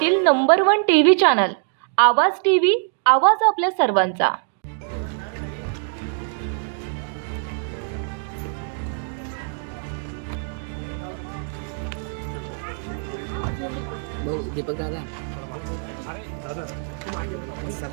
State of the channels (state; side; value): silent; left; 63 dB below the other